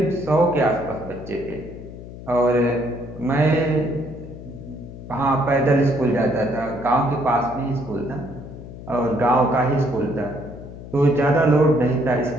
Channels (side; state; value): left; noise; hum, 13 dB below the sound